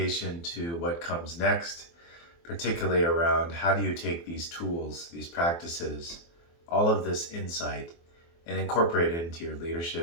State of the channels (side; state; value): right; late; 24 ms